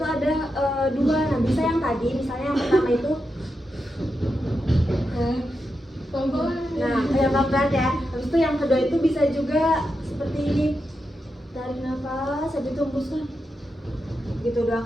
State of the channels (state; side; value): normal; both; correlation 0.87